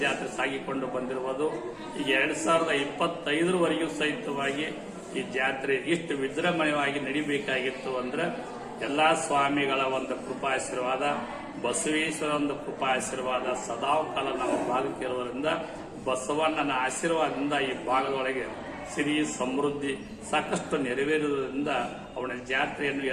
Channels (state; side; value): identical; both; correlation 1.00